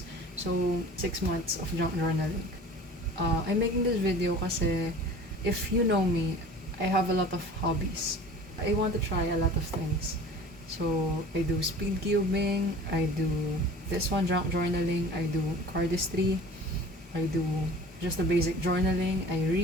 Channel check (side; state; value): both; normal; correlation 0.43